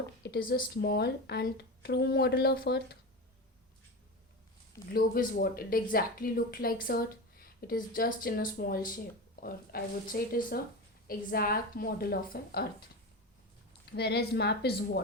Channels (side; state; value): both; normal; correlation 0.24